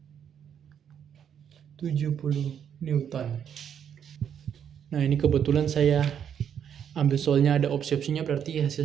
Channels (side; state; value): left; quieter; 8.5 dB